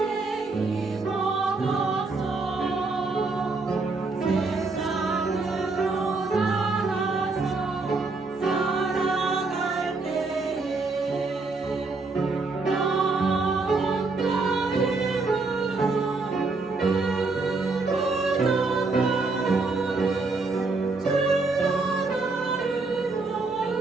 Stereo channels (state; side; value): quieter; left; 3.8 dB